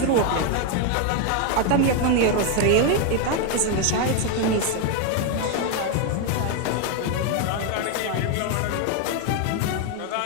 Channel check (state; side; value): different; both; correlation 0.01